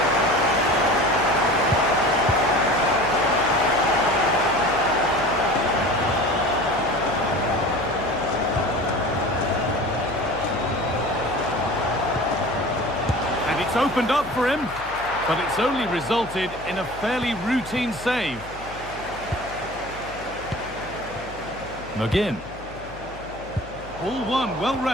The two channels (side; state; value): left; noise; hum, 17 dB below the sound